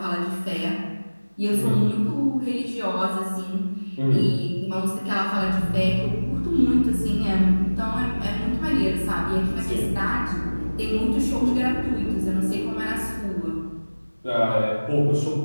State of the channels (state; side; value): inverted; both; correlation -1.00